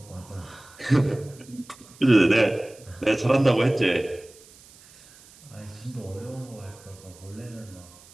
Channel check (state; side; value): noise; right; hiss, 24 dB below the sound